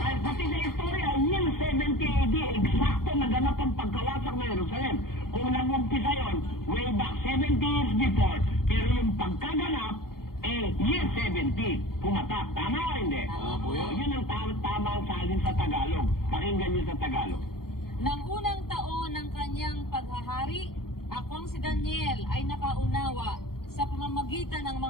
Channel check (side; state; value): right; late; 0.93 ms